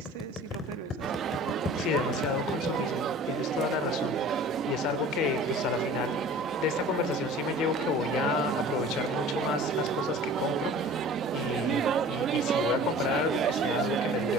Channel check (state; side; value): normal; both; correlation 0.44